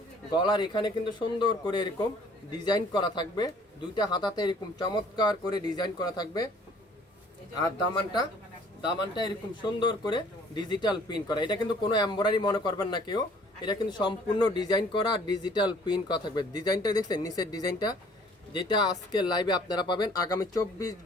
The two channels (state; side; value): normal; both; correlation 0.56